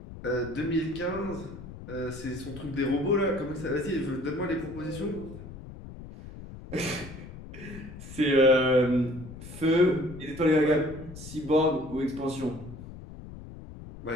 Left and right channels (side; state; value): left; noise; rumble, 14 dB below the sound